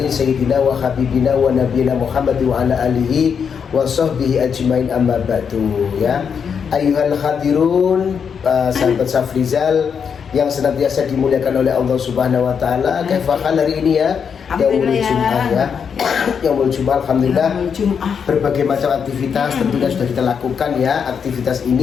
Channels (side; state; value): right; quieter; 6.8 dB